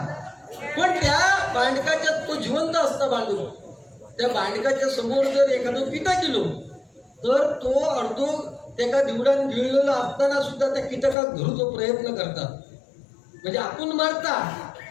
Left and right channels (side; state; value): right; drops out; at 11.2 s